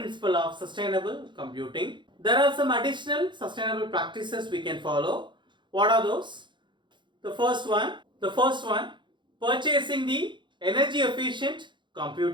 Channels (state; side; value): late; left; 0.23 ms